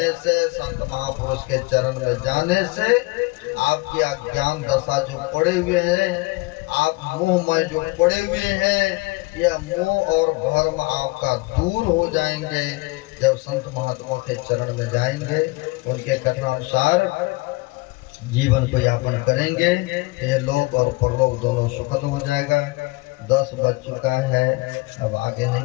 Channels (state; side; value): quieter; right; 23.8 dB